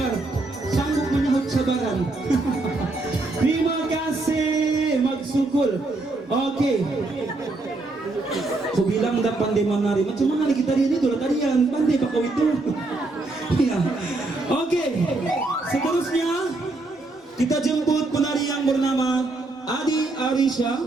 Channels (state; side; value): quieter; left; 3.1 dB